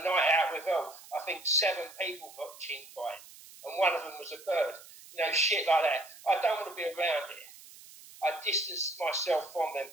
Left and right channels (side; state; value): right; noise; hiss, 19 dB below the sound